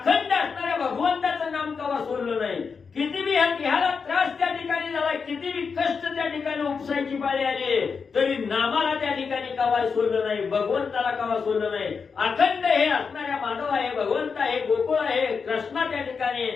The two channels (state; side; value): quieter; right; 5.5 dB